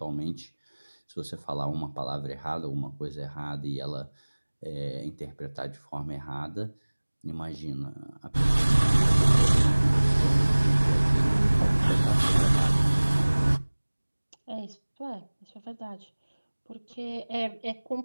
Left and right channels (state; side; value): inverted; both; correlation -1.00